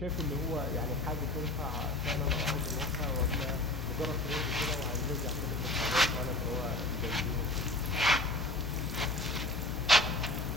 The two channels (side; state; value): left; noise; hum, 6 dB below the sound